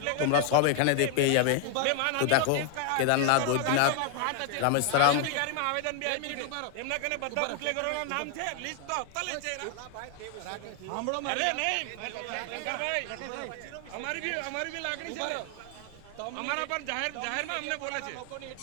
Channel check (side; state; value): both; different; correlation 0.00